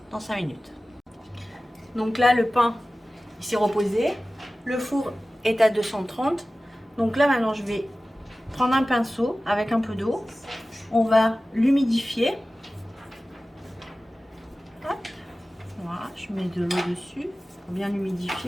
dans 5 minutes. Donc là, le pain, il s'est reposé. Le four est à 230. Donc là, maintenant, je vais prendre un pinceau avec un peu d'eau. On va l'humidifier. Voilà, je mets de l'eau dessus pour bien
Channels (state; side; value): normal; both; correlation 0.96